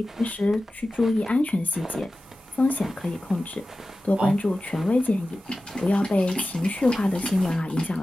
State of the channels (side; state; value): both; normal; correlation 0.95